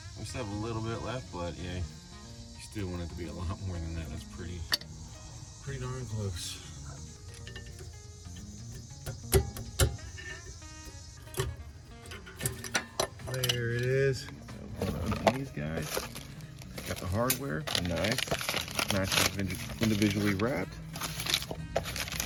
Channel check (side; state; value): both; identical; correlation 1.00